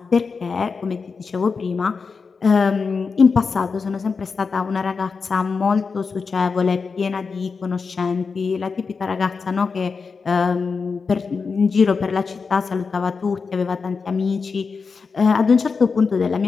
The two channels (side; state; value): right; quieter; 5.0 dB